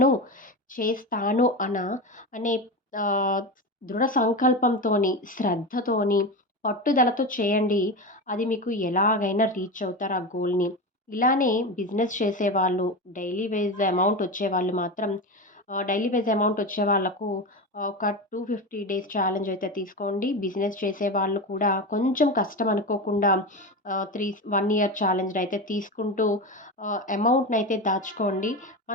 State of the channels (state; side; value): normal; both; correlation 0.22